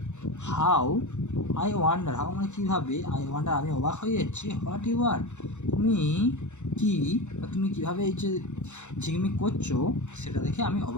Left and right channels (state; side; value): late; right; 0.83 ms